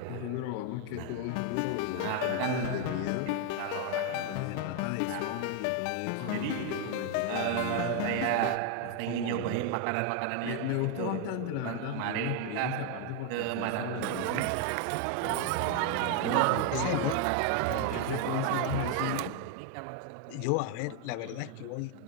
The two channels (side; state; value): both; different; correlation 0.01